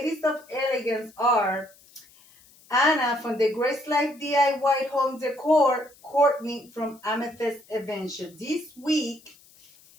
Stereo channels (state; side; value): noise; left; hiss, 27 dB below the sound